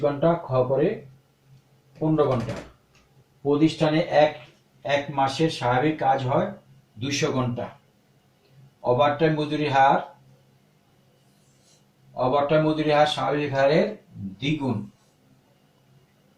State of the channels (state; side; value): identical; both; correlation 1.00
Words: ঘন্টা, খ করে 15 ঘন্টা। প্রতিষ্ঠানে এক মাসের স্বাভাবিক কাজ হয় 200 ঘন্টা। ওভারটাইম মজুরি হার স্বাভাবিক হারের দ্বিগুণ।